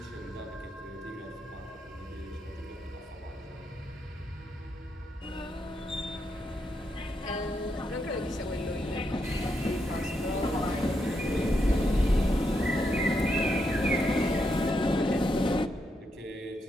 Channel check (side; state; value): both; normal; correlation 0.81